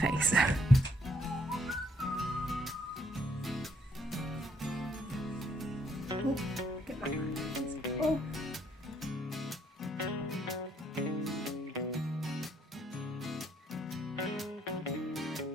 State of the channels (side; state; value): both; normal; correlation 0.69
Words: Oh, get my hands. Oh.